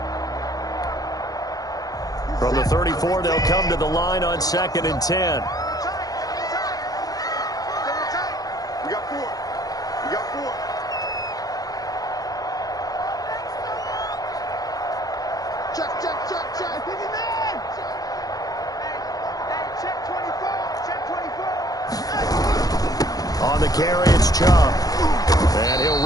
From the 34, they'll come to the line on 2nd and 10. We got 4. We got 4. Check. Hey, check 24. Check On the carry, it's Chubb. And he'll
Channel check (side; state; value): right; late; 0.18 ms